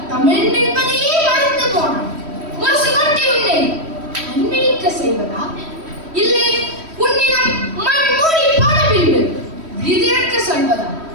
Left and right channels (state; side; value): late; left; 3.1 ms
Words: தமிழ் என்பதையே மறந்து போனான். முரசு கொட்டி உன்னை அன்பிக்க செய்வதா இல்லை உன்னிடம் மண் மூடி போன பின்பு விதிரக்க சொல்வதா?